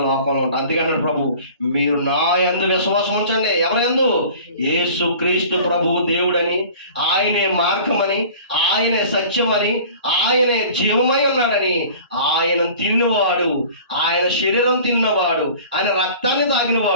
లోకంలో ఉంటాం. అందుకంటే ప్రభు, మీరు నా యందు విశ్వాసం ఉంచండి. ఎవరి యందు? యేసు క్రీస్తు ప్రభువు దేవుడని, ఆయనే మార్గమని, ఆయనే సత్యమని, ఆయనే జీవమై ఉన్నాడని, ఆయన తిన్నవాడు, ఆయన శరీరం తిన్నవాడు, ఆయన రక్తాన్ని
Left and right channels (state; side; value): inverted; both; correlation -0.44